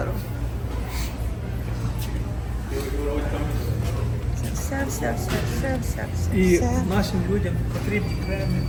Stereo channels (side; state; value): both; identical; correlation 1.00